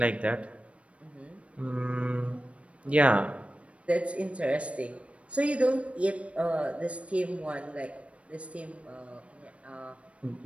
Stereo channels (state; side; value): late; left; 0.063 ms